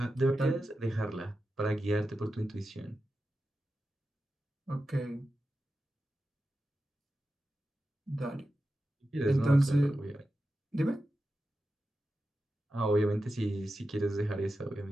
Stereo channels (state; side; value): normal; both; correlation 0.91